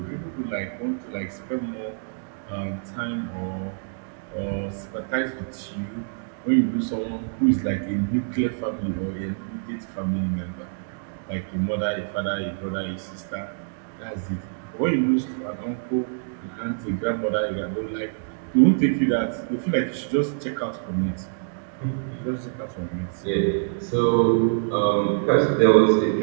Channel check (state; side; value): silent; left; digital silence